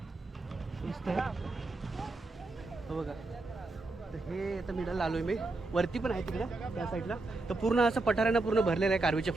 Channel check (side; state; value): left; quieter; 3.2 dB